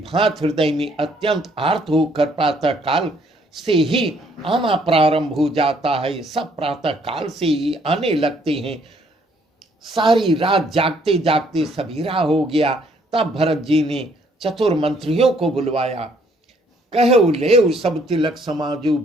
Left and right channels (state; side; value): normal; both; correlation 0.65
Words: हृदय में अत्यंत आर्त होकर प्रातः काल से ही आना प्रारंभ हो जाता है। सब प्रातः काल से ही आने लगते हैं। सारी रात जागते जागते सवेरा हो गया। तब भरत जी ने चतुर मंत्रियों को बुलवाया। कहो ले सब तिलक समाजू,